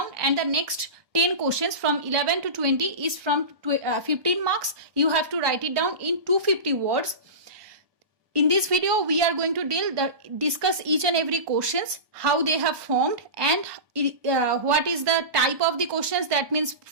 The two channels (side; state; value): left; late; 1.4 ms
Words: and the next 10 questions from 11 to 20 is from 15 marks. You have to write it down in 250 words. In this video, we are going to discuss each and every questions, how they have formed, and what is the type of the questions. That means